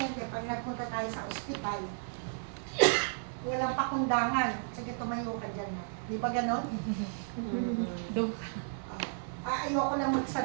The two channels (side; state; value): left; silent; 55 dB below the other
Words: pag nagpunta tayo sa ospital, walang pakundangan. Sige, tumayo ka dyan. Di ba ganon? Dog. Ayoko lang